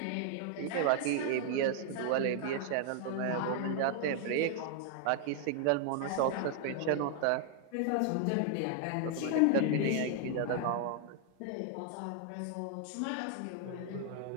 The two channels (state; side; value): different; both; correlation 0.00